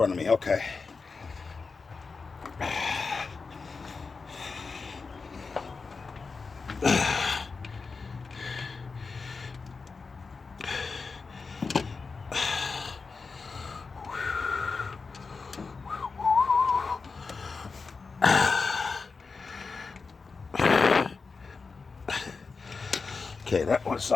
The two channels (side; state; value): right; quieter; 4.6 dB